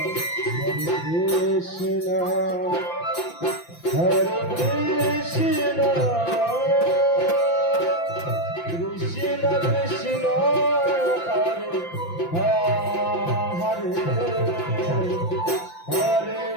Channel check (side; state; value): right; late; 5.8 ms